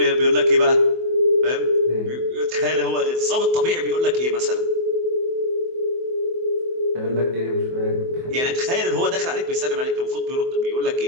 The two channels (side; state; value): left; late; 24 ms